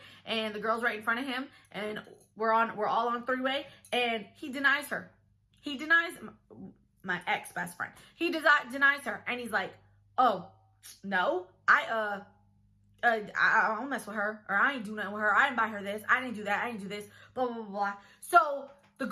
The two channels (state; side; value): identical; both; correlation 1.00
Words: and the girl's right in front of him, and we're all on three-way, and he denies her. He denies my ex-best friend. He denies her, and he's like, oh, no, I don't mess with her, or I ain't do nothing with her. I didn't buy her this. I didn't do that. I didn't do this, blah, blah, blah, blah. So the